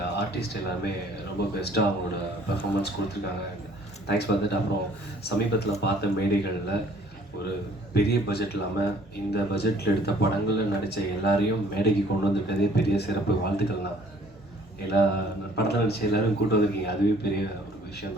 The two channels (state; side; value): normal; both; correlation 0.57